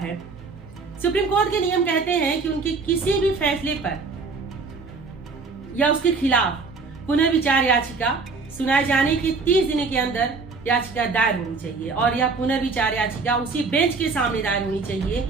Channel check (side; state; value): left; quieter; 4.3 dB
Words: सुप्रीम कोर्ट के नियम कहते हैं कि उनके किसी भी फैसले पर या उसके खिलाफ पुनर्विचार याचिका सुनाए जाने के 30 दिन के अंदर याचिका दायर होनी चाहिए और यह पुनर्विचार याचिका उसी बेंच के सामने दायर होनी चाहिए